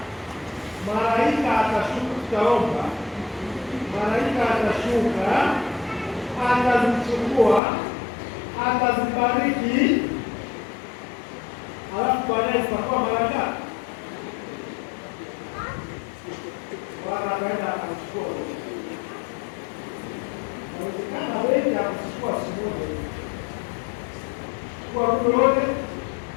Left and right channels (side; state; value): right; drops out; at 7.6 s